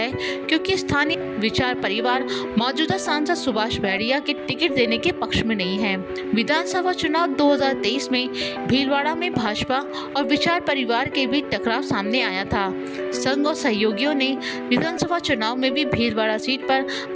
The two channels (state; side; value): identical; both; correlation 1.00